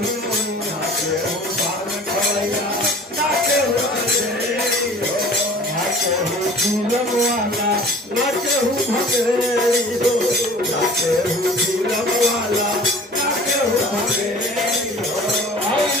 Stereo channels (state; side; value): normal; both; correlation 0.45